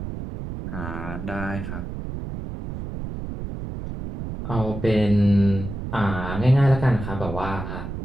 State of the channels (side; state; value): right; noise; rumble, 7 dB below the sound